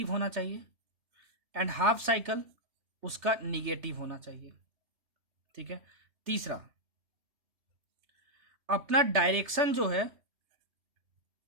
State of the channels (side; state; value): left; late; 3.4 ms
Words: होना चाहिए एंड हाफ साइकिल उसका निगेटिव होना चाहिए। ठीक है, तीसरा अपना डायरेक्शन जो है